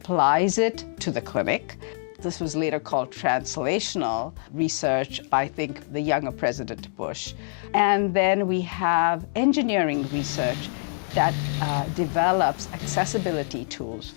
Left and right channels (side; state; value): right; silent; digital silence